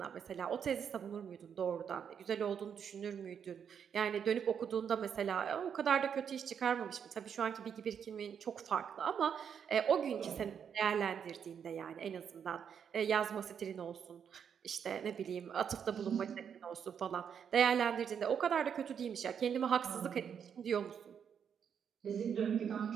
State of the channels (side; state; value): left; quieter; 7.7 dB